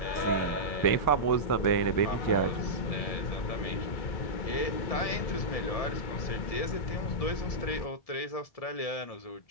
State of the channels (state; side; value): late; right; 1.7 ms